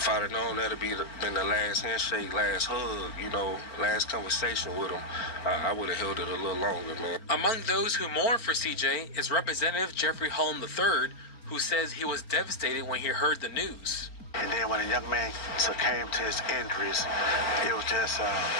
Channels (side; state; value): right; late; 4.3 ms